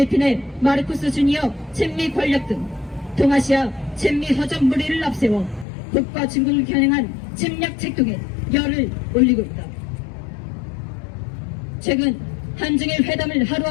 마르코스 주니어 친미 권력 등 동아시아 친미 허접 무리를 앞세워 북과 중국을 겨냥한 침략 책동에 열을 올리고 있다. 최근 한중일 회담을 하루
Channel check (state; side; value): drops out; right; at 5.7 s